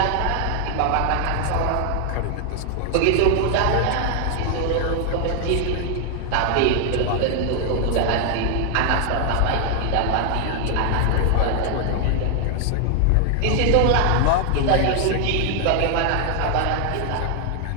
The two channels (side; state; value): both; different; correlation 0.00